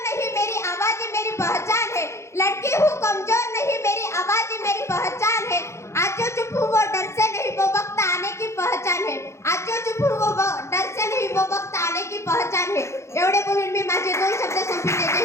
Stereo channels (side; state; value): right; late; 0.13 ms